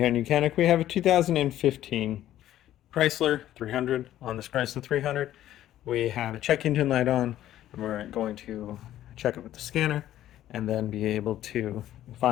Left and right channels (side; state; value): right; quieter; 12.9 dB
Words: on Ucanic we have a 2015 Chrysler 300. On this Chrysler 300 we have a check engine light on, and we're going to check it with the scanner and then be able to